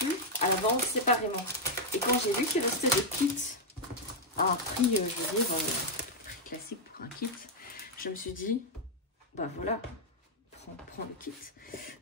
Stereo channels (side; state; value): both; normal; correlation -0.02